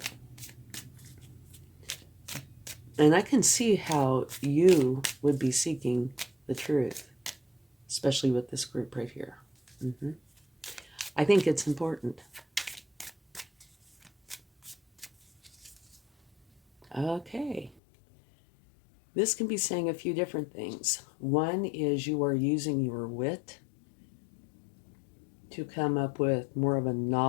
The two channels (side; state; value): right; drops out; at 17.8 s